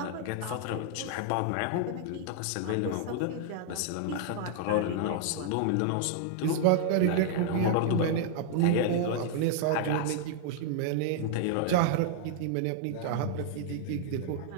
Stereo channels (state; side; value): different; both; correlation -0.01